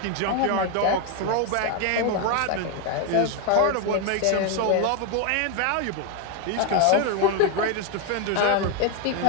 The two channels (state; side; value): different; both; correlation 0.01